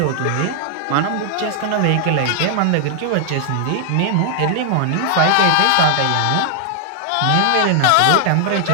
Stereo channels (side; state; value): both; different; correlation 0.00